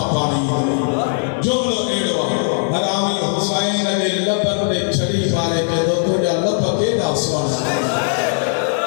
पानी जुमलो एड़वा हरामी हुसैन दे लबन दे छड़ी वाले के दो तुझा लब केदा सोना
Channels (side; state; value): right; silent; digital silence